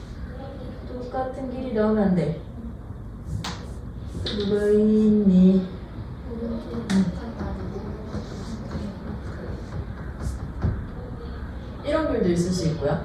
똑같은 길이 나오면 안 돼. 누가 있니? 이런 길도 있을 수 있고요.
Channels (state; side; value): identical; both; correlation 1.00